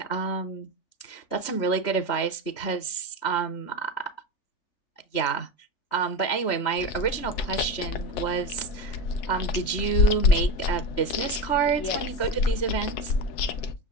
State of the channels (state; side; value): late; right; 3.4 ms